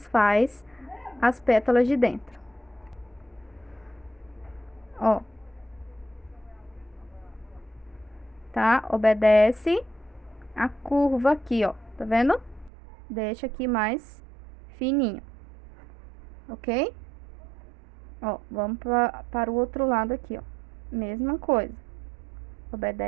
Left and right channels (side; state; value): left; drops out; at 12.7 s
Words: faz as pétalas de dentro. Ó. Tá? Obedece a curva aqui, ó. Tá vendo? Deixa aqui mais fininho. Ok? Ó, vamos para o outro lado aqui, ó. Mesma coisa.